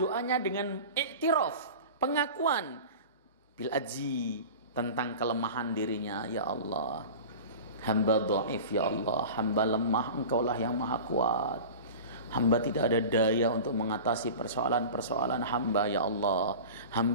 dengan i'tiraf, pengakuan bil azzi, tentang kelemahan dirinya. Ya Allah, hamba dhaif, ya Allah, hamba lemah, Engkaulah yang maha kuat. Hamba tidak ada daya untuk mengatasi persoalan-persoalan hamba, ya Allah.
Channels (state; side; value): inverted; both; correlation -0.35